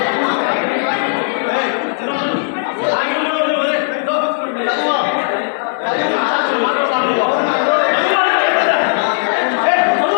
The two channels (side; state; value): right; silent; 69 dB below the other